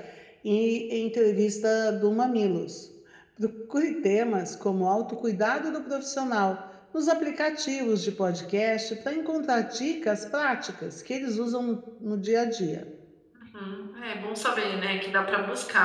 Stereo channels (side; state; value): both; identical; correlation 1.00